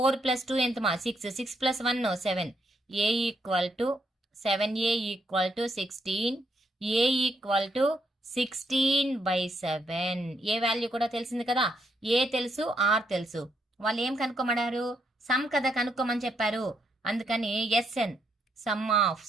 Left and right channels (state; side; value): normal; both; correlation 0.77